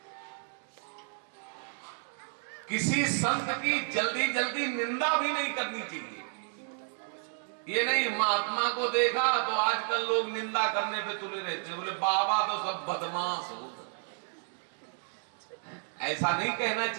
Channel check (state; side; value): silent; left; 57 dB below the other